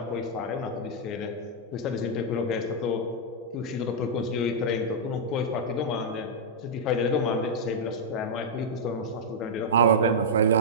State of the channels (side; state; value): both; normal; correlation -0.08